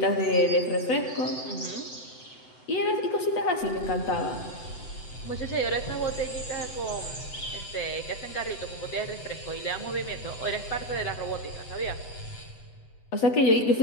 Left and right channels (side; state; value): right; late; 7.9 ms